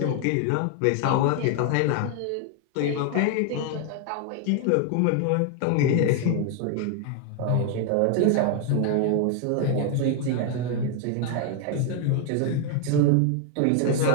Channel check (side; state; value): both; different; correlation 0.01